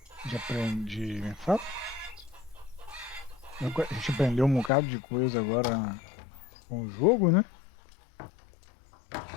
aprender, como é que fala? A gente aprendeu um bocado de coisa agora com o jogo, né?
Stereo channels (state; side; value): drops out; right; at 4.7 s